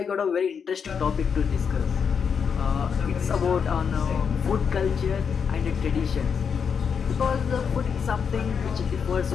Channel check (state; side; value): quieter; right; 6.6 dB